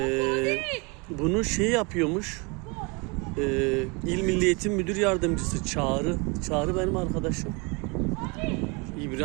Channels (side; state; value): left; quieter; 29.7 dB